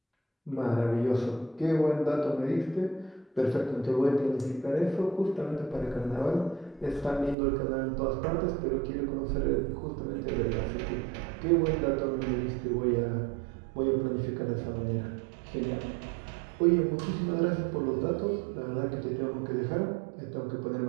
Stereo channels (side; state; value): left; drops out; at 7.4 s